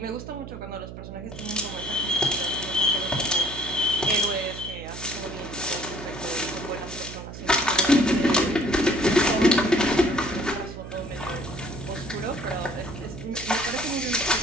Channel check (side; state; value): right; noise; hum, 11 dB below the sound